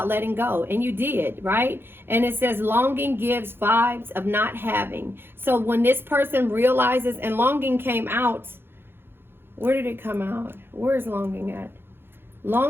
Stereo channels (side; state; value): left; late; 0.11 ms